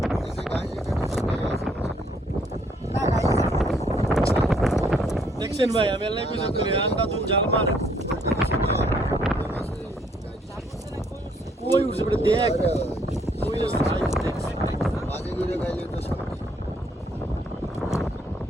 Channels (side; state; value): both; normal; correlation 0.67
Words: এই যে গাইজ এখানে শুনে আছে না গাইজ দেখছেন ভাই আমি আল্লাহ কইছি করে আন্ডা দুন জাল মারে কই উঠছে বড় দেখ কই আছে ভাই বাজে করে গাইলে তো সব